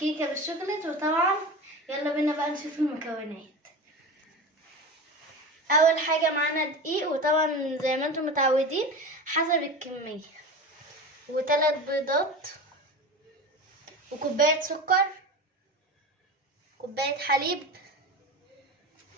بالشوكولات، وطبعا يلا بينا بقى نشوف المكونات. اول حاجة معانا دقيق، وطبعا زي ما انتم متعودين حسب الكمية، وثلاث بيضات، وكوباية سكر، كوباية حليب،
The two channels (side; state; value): both; normal; correlation 0.29